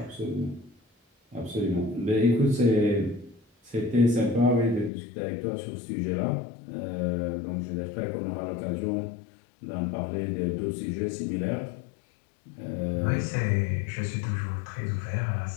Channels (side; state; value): right; drops out; at 4.9 s